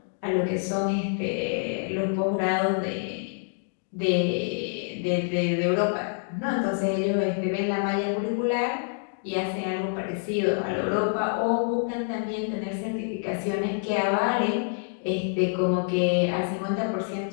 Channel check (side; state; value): right; silent; 60 dB below the other